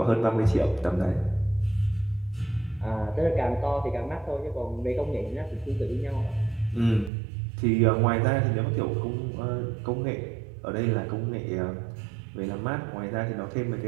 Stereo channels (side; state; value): left; drops out; at 7.1 s